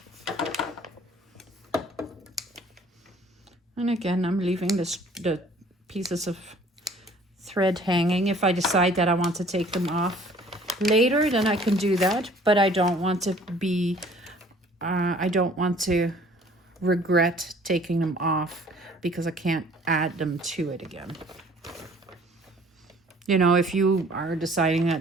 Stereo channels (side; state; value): both; normal; correlation 0.54